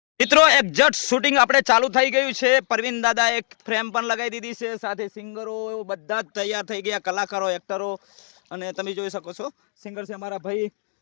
મિત્રો exact shooting આપણે ચાલુ થઈ ગયું છે. પરવીન દાદા એક ફ્રેમ પણ લગાવી દીધી છે, સાથે સિંગરો બધા જ તૈયાર થઈ ગયા, કલાકારો, એક્ટરો. અને તમે જોઈ શકો છો સિંગર છે અમારા ભાઈ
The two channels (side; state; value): right; silent; 64 dB below the other